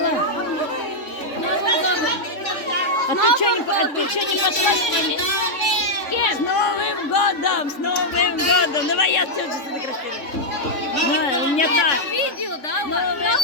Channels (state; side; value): late; right; 3.5 ms